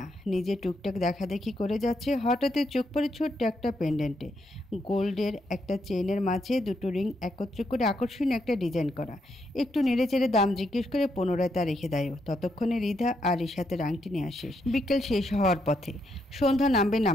নিজে টুকটাক দেখাদেখি করে যাচ্ছে। হঠাৎই চোখ পড়ে ছোট্ট একটা পেন্ডেন্টে। গোল্ডের একটা চেইনের মাঝে দুটো রিং একত্র করে আকর্ষণীয় একটা ডিজাইন করা। একটু নেড়ে চেড়ে দাম জিজ্ঞেস করে পুনরায় তা রেখে দেয়। ততক্ষণে রিধা আর রিশাতের আংটি নিয়ে আসে। বিকেল শেষ হওয়ার পথে। সন্ধ্যা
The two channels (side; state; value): both; normal; correlation 0.78